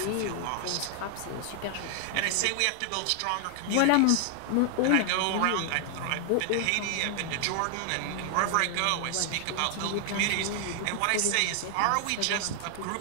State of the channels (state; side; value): different; both; correlation 0.00